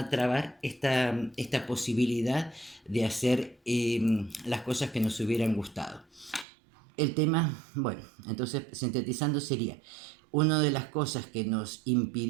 trabar esta posibilidad de hacer las cosas que nos hubieran gustado. El tema, bueno, entonces sintetizando sería, una de las cosas que nos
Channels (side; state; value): left; drops out; at 6.5 s